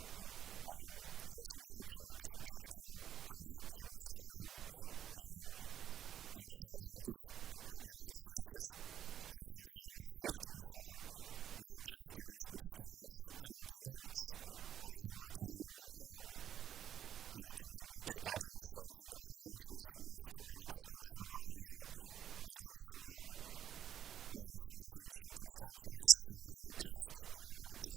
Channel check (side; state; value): left; quieter; 9.9 dB